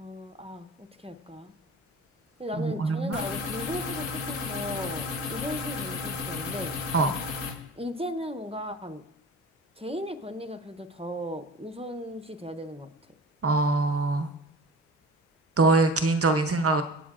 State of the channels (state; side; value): normal; both; correlation 0.37